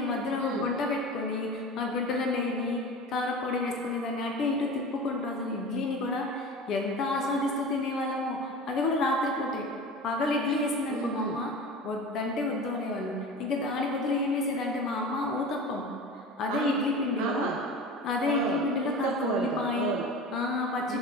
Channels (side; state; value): both; normal; correlation 0.34